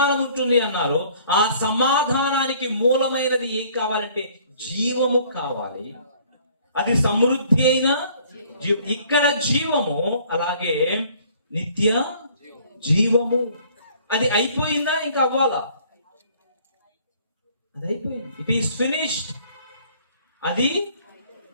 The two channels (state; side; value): inverted; both; correlation -0.57